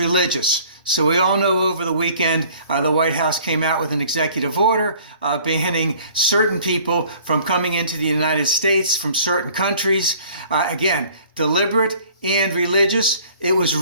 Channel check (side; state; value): both; inverted; correlation -0.53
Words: So we all know over the weekend, the White House came out with an executive order banning certain people from coming into the United States from certain countries. Again, deliberate and religious. It was